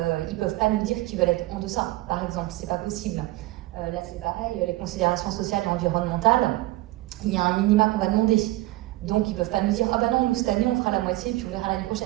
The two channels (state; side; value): quieter; left; 18.5 dB